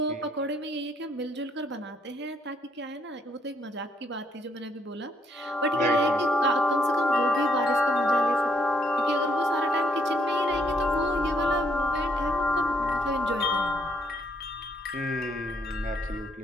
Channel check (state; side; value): normal; both; correlation 0.72